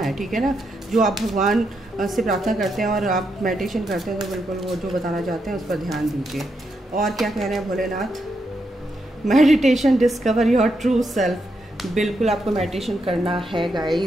ठीक है ना। जो आप भगवान से प्रार्थना करते हैं और आप मेडिटेशन करते हैं तो बिल्कुल वो जो बताना चाहते हैं उस पर ध्यान दीजिए। और क्या कह रहे हैं Bholenath, meditation discover your true self. बिल्कुल आपको मेडिटेशन करना है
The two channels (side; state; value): both; normal; correlation 0.82